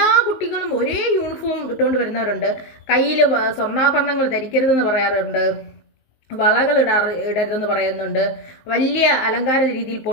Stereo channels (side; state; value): right; late; 19 ms